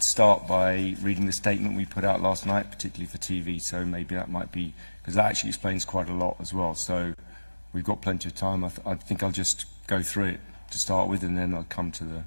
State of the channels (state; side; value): inverted; both; correlation -1.00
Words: start by reading the statement we put out last night, particularly for TV, so maybe that might be, because that actually explains quite a lot as well. So we've got plenty of time. I think I'll just go through it to start with, and then I'll come to